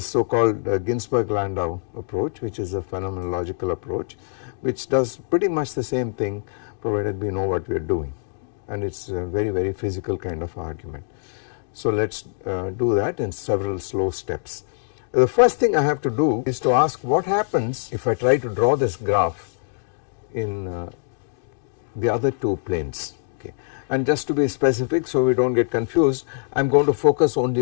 so called Ginzburg-Landau approach, which is a phenomenological approach which does pretty much the same thing provided we know what we are doing, and it is a very, very physical kind of argument. So let us do that in several slow steps. The first thing I have to do is to ask what happens if I try to draw this graph in the other two planes. Okay. And just to be specific so we do not get confused, I am going to focus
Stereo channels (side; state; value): right; silent; digital silence